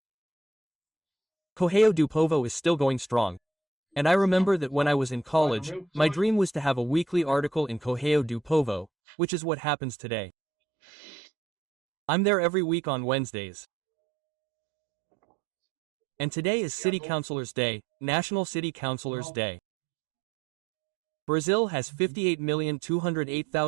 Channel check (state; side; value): drops out; left; at 8.9 s